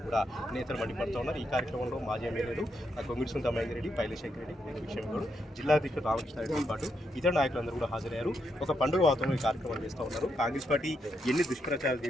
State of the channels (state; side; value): normal; both; correlation 0.81